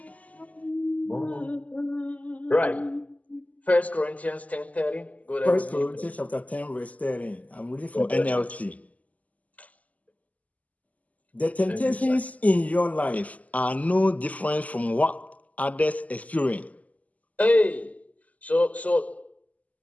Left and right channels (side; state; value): right; late; 0.074 ms